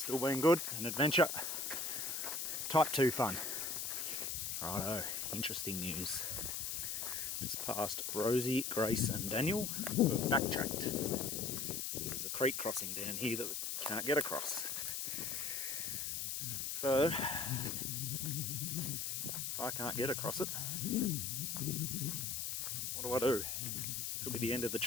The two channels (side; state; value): left; noise; hiss, 2 dB below the sound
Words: been good, an adventure. Type 2 fun. Righto, interesting news. Just past Rosie, Grace and Daniel. We've backtracked. There's a creek crossing down here that we can't get across. So, if I can't get across it, what do I do? Could be the end of the